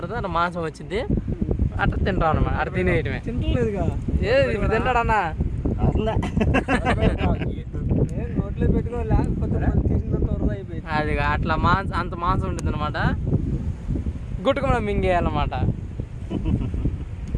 అట్లా మాంసం వచ్చింది, అట్లా తింటాం అనమాట. అట్లా తినేయటమే. తింటలేదుగా ఇప్పుడు తింటాడు అన్న. అది అట్లా అంత మాంసం ఉంటుంది అనమాట. గుట్టుకున్నా మింగేయాలన్నమాట.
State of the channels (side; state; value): both; identical; correlation 1.00